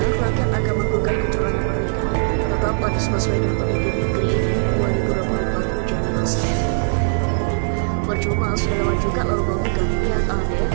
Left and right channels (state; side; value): silent; left; digital silence